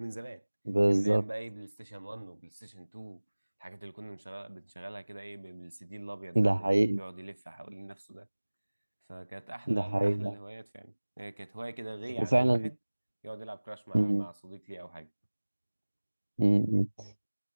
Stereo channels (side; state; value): both; inverted; correlation -1.00